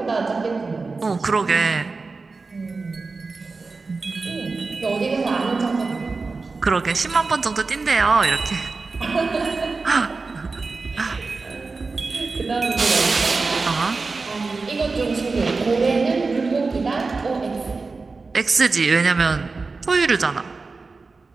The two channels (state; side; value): quieter; left; 4.0 dB